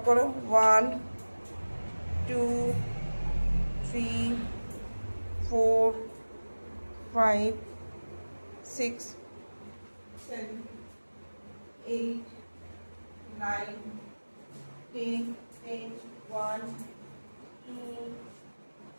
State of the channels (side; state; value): both; inverted; correlation -1.00